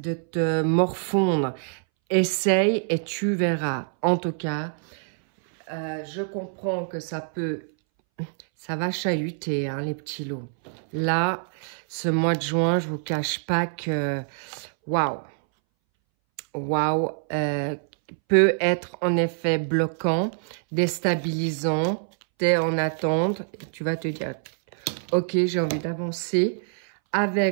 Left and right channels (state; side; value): silent; left; 62 dB below the other